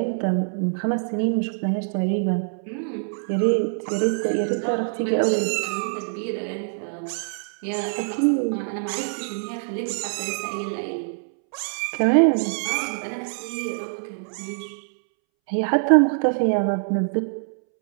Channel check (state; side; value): silent; left; 62 dB below the other